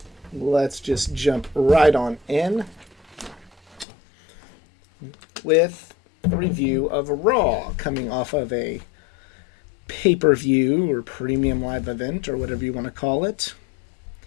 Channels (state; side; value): drops out; right; at 3.9 s